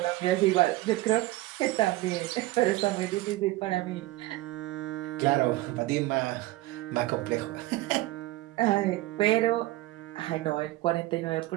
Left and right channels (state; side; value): quieter; left; 18.0 dB